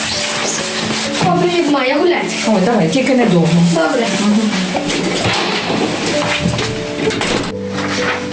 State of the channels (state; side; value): identical; both; correlation 1.00